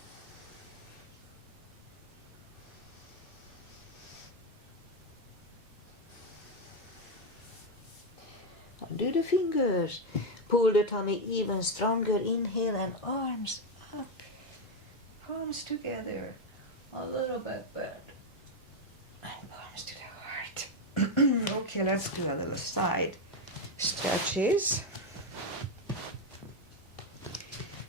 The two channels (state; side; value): normal; both; correlation 0.05